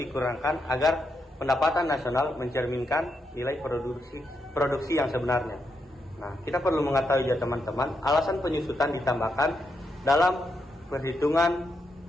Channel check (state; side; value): normal; both; correlation 0.82